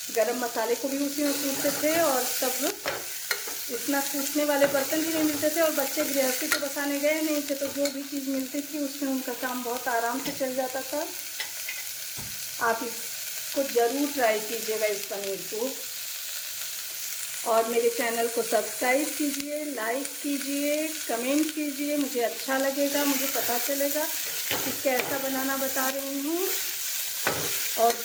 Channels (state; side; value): identical; both; correlation 1.00